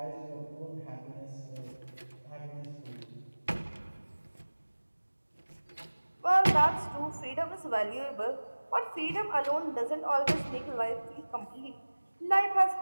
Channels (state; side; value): inverted; both; correlation -1.00